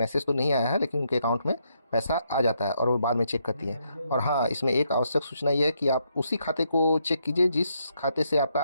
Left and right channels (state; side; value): inverted; both; correlation -0.76